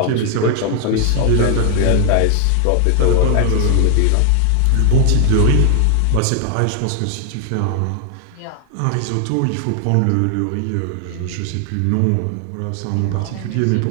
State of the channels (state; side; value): different; both; correlation 0.00